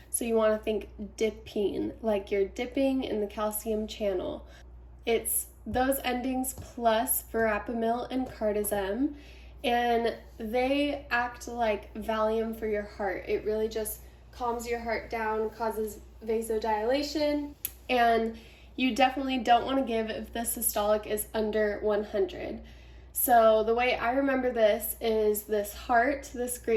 So you want to think dipine, like you're dipping in the calcium channel. It's those endings plus verapamil and cardizem, and they act like Valium for your heart. It really just calms your heart down, causes vasodilation, and you definitely don't want to give if the systolic is under 100. So the way I remember this is this heart, this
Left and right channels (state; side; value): identical; both; correlation 1.00